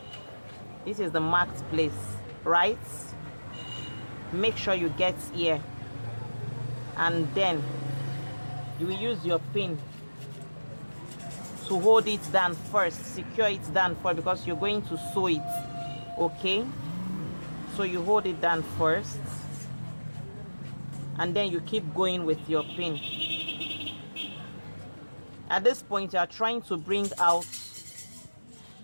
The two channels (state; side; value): inverted; both; correlation -1.00